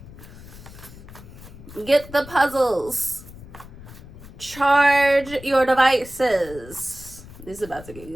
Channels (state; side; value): noise; left; rumble, 17 dB below the sound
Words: Get the puzzles. Charge your devices. This is about to get